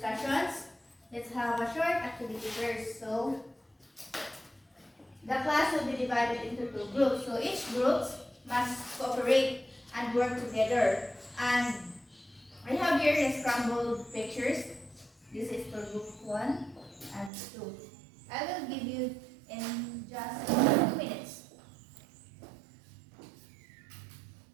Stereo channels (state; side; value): drops out; left; at 17.3 s